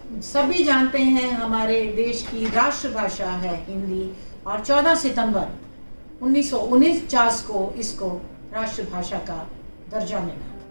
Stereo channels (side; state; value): both; inverted; correlation -1.00